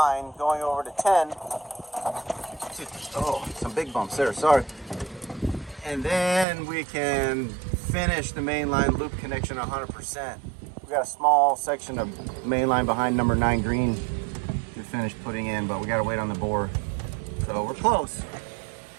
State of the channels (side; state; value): left; drops out; at 6.5 s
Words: going over to 10. Oh, some big bumps there, sorry. And then we can finish the mainline loop connection 100%. We got a small section of mainline behind number 9 green to finish putting in, but we gotta wait on the bore. So we're close.